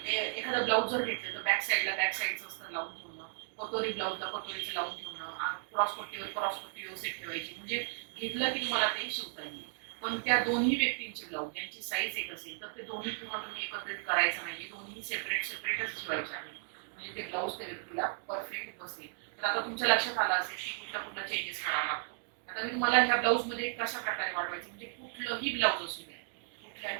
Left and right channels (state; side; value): silent; left; 55 dB below the other